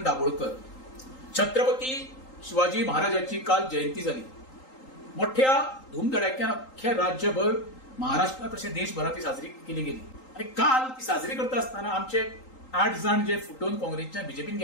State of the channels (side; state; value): right; late; 3.8 ms